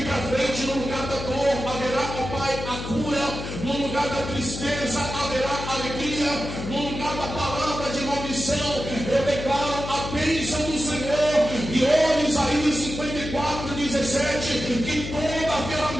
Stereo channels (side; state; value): left; noise; hum, 7 dB below the sound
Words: para frente, no lugar da dor, haverá, ó Pai, a cura, no lugar da tristeza, haverá alegria, no lugar da palavra de maldição, eu declaro a bênção do Senhor. E olha Isaías 54:17, que toda a